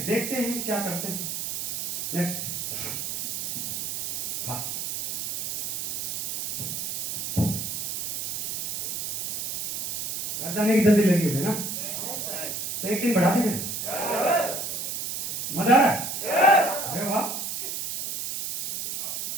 देखते हैं क्या करते हैं। Next fast. घर जाने की जल्दी लगी होगी ना, तो एक दिन बढ़ा देंगे। मजा आ रहा है? अरे वाह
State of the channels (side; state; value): right; noise; hiss, 3 dB below the sound